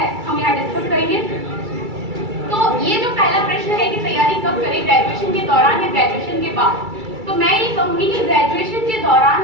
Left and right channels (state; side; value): late; left; 2.3 ms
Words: हम यहाँ डिस्कस करेंगे। तो ये जो पहला प्रश्न है कि तैयारी कब करें, ग्रेजुएशन के दौरान या ग्रेजुएशन के बाद, तो मैं ये कहूंगी कि ग्रेजुएशन के